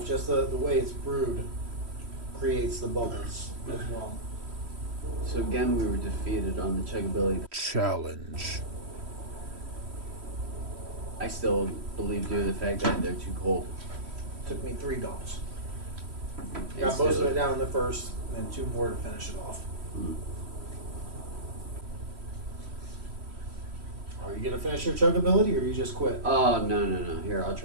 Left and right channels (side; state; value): left; late; 3.1 ms